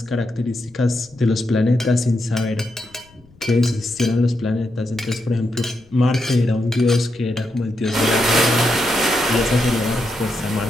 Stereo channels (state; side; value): noise; left; rumble, 28 dB below the sound